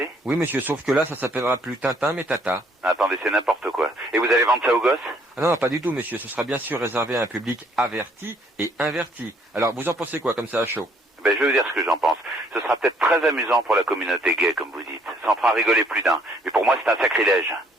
Oui, monsieur, sauf que là, ça s'appellera plus Tintin, mais Tata. Attendez, c'est n'importe quoi. Et vous allez vendre ça aux gosses? Ah non, pas du tout, monsieur. Ce sera bien sûr réservé à un public averti et inverti. Alors, vous en pensez quoi, comme ça, à chaud? Ben, je vais vous dire ce que j'en pense. Ce sera peut-être très amusant pour la communauté gay, comme vous dites. Ça en fera rigoler plus d'un. Mais pour moi, c'est un sacrilège.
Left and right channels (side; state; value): both; normal; correlation 0.64